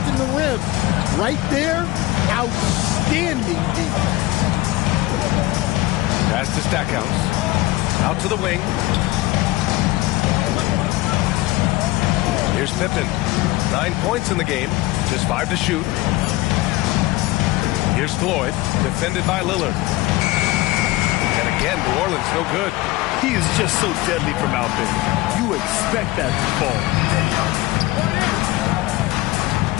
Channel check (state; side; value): quieter; right; 18.9 dB